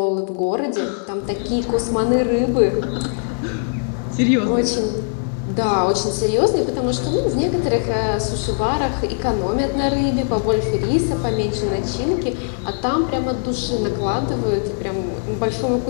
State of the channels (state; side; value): silent; right; 65 dB below the other